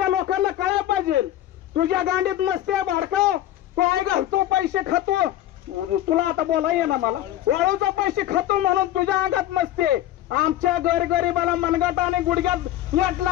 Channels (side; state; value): right; quieter; 13.2 dB